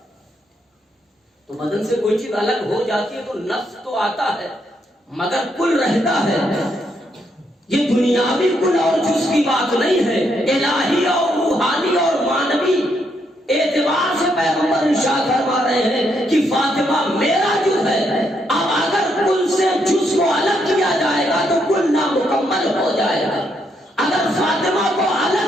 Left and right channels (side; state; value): both; normal; correlation 0.76